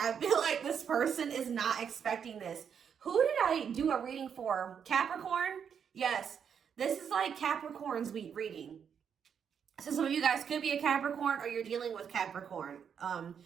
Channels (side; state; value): left; quieter; 7.5 dB